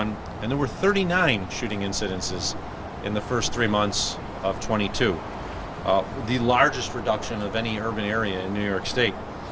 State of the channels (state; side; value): identical; both; correlation 1.00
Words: and there were 39 shooting incidences in the first 3 months of 22. The largest reduction of any urban area in New York State.